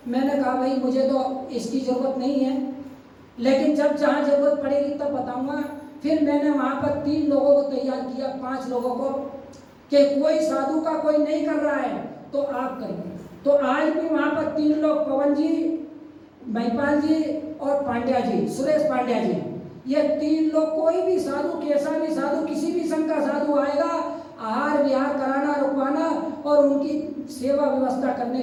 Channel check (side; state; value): both; identical; correlation 1.00